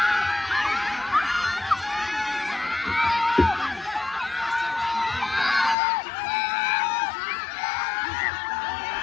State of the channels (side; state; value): right; drops out; at 5.8 s